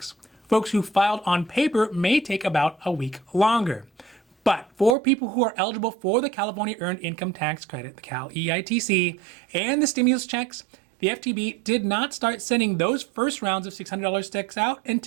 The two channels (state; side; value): drops out; left; at 5.0 s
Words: Folks who filed on paper may take about a week longer. But for people who are eligible for the California Earned Income Tax Credit, the Cal EITC, and the stimulus checks, the FTB did not start sending those first rounds of $600 checks out